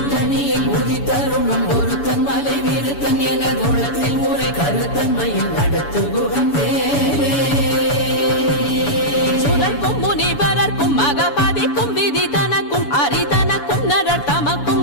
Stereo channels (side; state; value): right; late; 7.0 ms